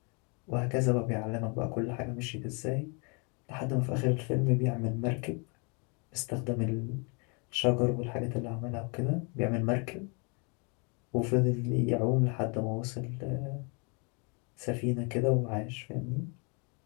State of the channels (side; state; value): right; quieter; 33.9 dB